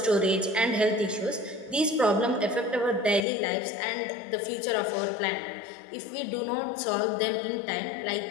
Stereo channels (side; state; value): right; drops out; at 3.2 s